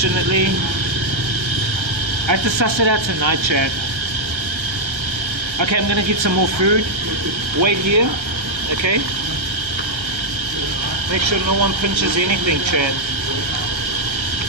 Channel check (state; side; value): late; left; 1.4 ms